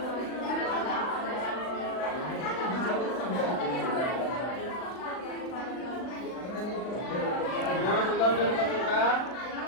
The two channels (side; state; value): right; late; 39 ms